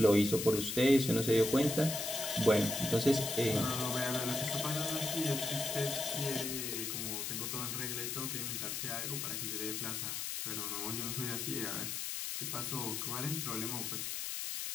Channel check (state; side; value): noise; left; hiss, 3 dB below the sound